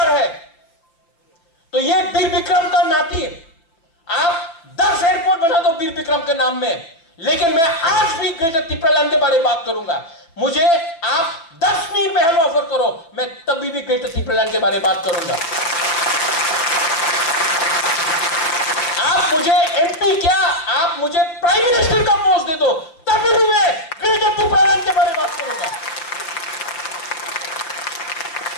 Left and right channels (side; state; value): right; late; 5.9 ms